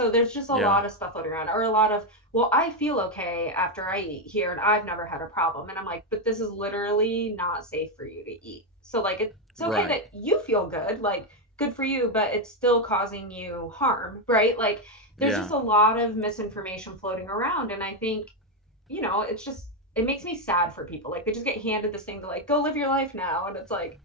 there's just a Yeah. lot of stuff floating around, or a lot of, well, I feel okay after I eat here and I've never had a problem. And I'm like, but this is literally not safe for you to eat. So, like, it's okay Right. that you feel good, like, good for you, but it's still causing you harm, right? Like, there's just Yeah. a lot of misinformation floating around. And I think, it's just, it makes me sad for people. Like, they just get handed this thing to, like, go live your life now. And it's like,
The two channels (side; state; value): both; normal; correlation 0.05